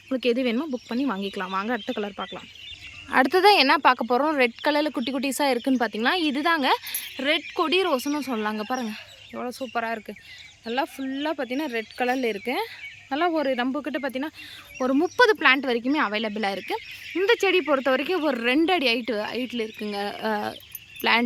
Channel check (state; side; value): identical; both; correlation 1.00